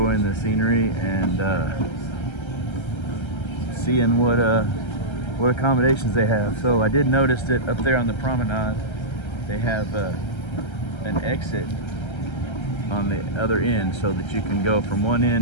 the scenery and seeing what accommodations they have. So I did notice that up there on the promenade they have an exit on the other end, so that you can go from one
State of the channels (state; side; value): late; right; 1.3 ms